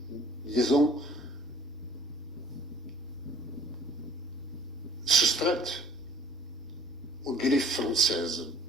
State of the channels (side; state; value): both; normal; correlation 0.52